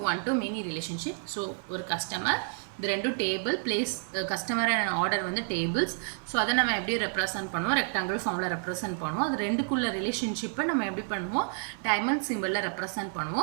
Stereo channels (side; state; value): left; silent; 58 dB below the other